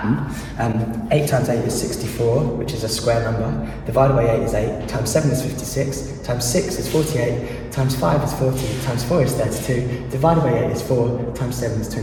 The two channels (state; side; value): identical; both; correlation 1.00